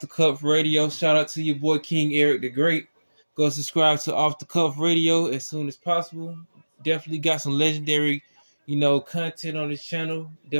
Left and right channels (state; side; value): inverted; both; correlation -1.00